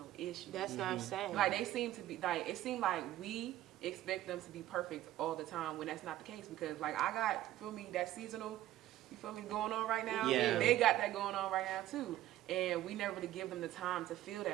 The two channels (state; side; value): quieter; left; 14.1 dB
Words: issues. That's what I'm saying. Like they seem to be like it seemed like we expect them to be perfect all the time when that's not the case. Because like I got, feel me, that seasonal, you feel me, going on right now. Yeah. They got that going on right now too. And we never really give them the time to feel